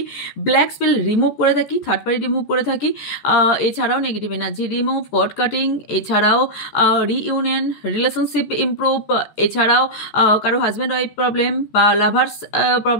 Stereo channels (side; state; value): right; late; 14 ms